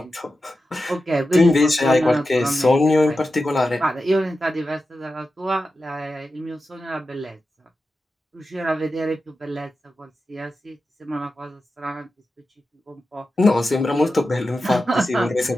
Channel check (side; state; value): both; normal; correlation 0.91